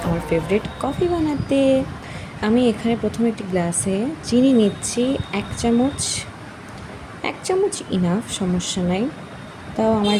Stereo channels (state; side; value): identical; both; correlation 1.00